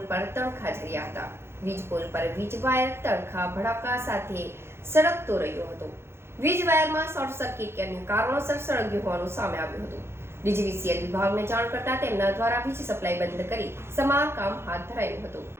પર તણખા ઝર્યા હતા. વીજ પોલ પર વીજ વાયર તણખા ભડાકા સાથે સળગતો રહ્યો હતો. વીજ વાયરમાં શોર્ટ સર્કિટ કે અન્ય કારણોસર સળગ્યું હોવાનું સામે આવ્યું હતું. ડીજીવીસીએલ વિભાગને જાણ કરતા તેમના દ્વારા વીજ સપ્લાય બંધ કરી સમારકામ હાથ ધરાયું હતું.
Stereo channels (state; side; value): late; left; 0.12 ms